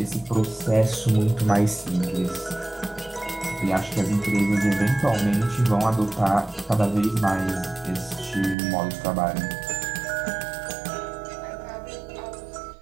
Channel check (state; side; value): drops out; left; at 8.6 s